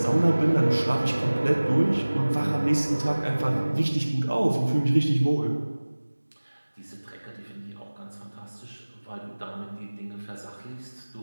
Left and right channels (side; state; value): both; inverted; correlation -1.00